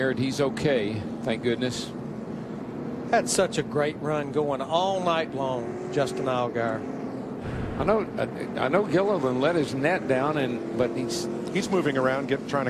and he's okay, thank goodness. Had such a great run going all night long, Justin Allgaier. I know Gilliland let his net down, but he's moving around, trying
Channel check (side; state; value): both; identical; correlation 1.00